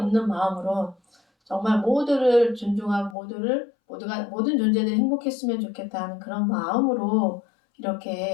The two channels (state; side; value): drops out; right; at 3.2 s